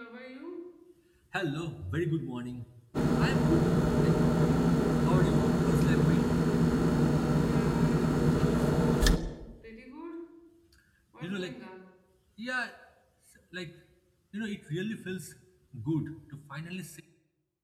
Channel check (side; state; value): both; identical; correlation 1.00